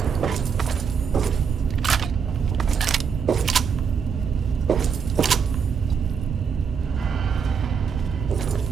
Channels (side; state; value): left; quieter; 6.5 dB